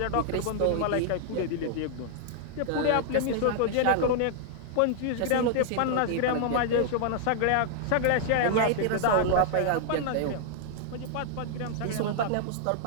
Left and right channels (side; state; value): both; different; correlation -0.01